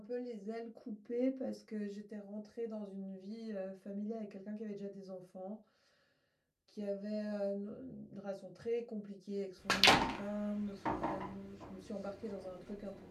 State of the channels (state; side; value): identical; both; correlation 1.00